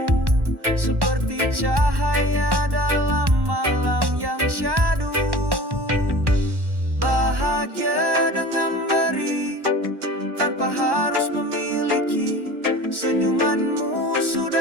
seperti cahaya dalam malam yang syahdu. Bahagia dengan beri tanpa harus memiliki. Senyumanmu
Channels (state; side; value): late; left; 1.1 ms